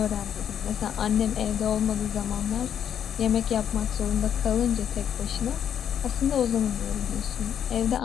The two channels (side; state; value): right; quieter; 9.0 dB